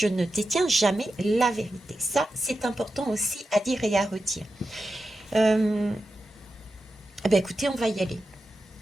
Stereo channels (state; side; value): normal; both; correlation 0.91